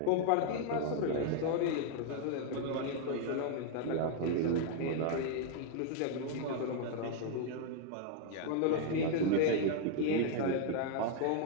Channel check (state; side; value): different; both; correlation 0.00